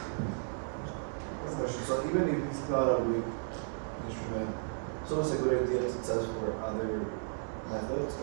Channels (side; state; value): left; silent; 55 dB below the other